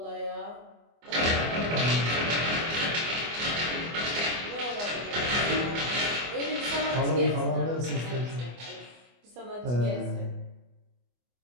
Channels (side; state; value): left; late; 24 ms